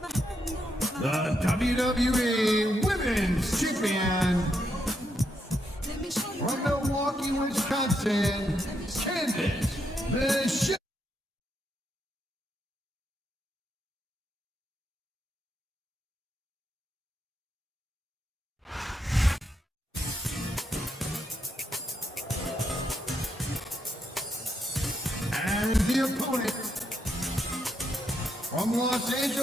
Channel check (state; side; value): normal; both; correlation 0.80